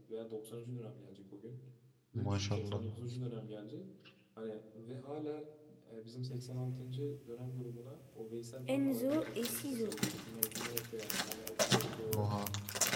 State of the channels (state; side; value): identical; both; correlation 1.00